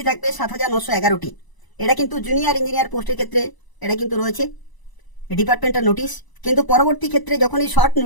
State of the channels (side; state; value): right; late; 1.0 ms